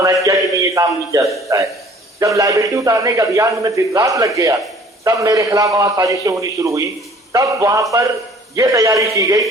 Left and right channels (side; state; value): both; normal; correlation 0.52